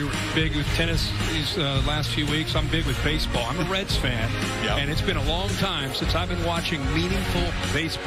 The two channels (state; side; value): identical; both; correlation 1.00